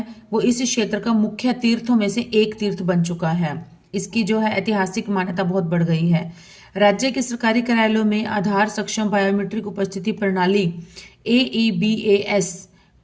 वो इस क्षेत्र का मुख्य तीर्थों में से एक तीर्थ बन चुका है। इसकी जो है ऐतिहासिक मान्यता बहुत बढ़ गई है। राज्य के सरकारी कार्यालयों में आधार सक्षम बायोमेट्रिक उपस्थिति प्रणाली AEBAS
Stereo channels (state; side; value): identical; both; correlation 1.00